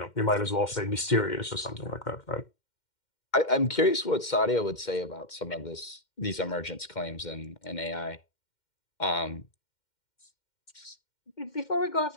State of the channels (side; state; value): right; late; 2.1 ms